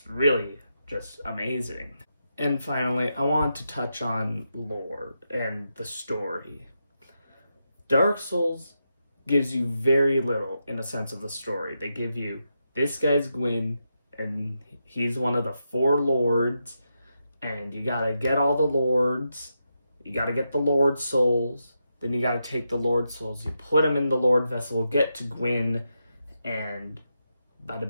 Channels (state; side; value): inverted; both; correlation -0.85